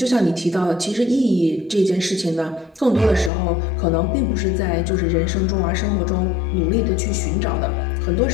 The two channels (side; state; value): right; drops out; at 3.3 s